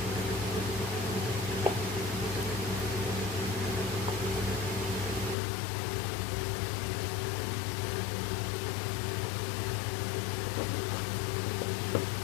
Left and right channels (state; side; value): drops out; right; at 5.4 s